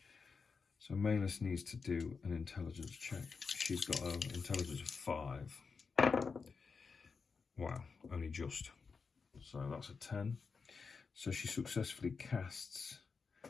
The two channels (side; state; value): right; quieter; 5.1 dB